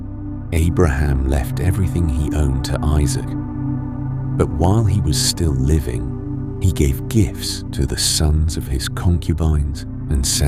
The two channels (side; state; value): both; identical; correlation 1.00